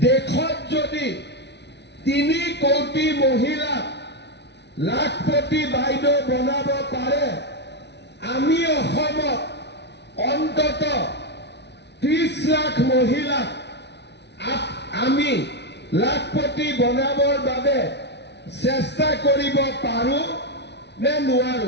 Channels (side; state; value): right; late; 0.50 ms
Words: দেশত যদি 3 কোটি মহিলা লাখপতি বাইদেউ বনাব পাৰে আমি অসমত অন্তত 30 লাখ মহিলা আমি লাখপতি বনাবৰ বাবে চেষ্টা কৰিব পাৰো নে